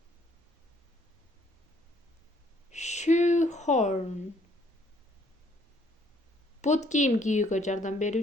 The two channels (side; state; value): both; normal; correlation 0.65